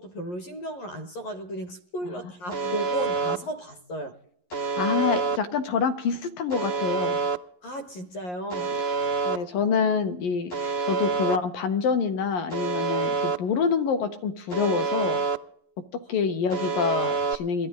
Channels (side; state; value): right; late; 11 ms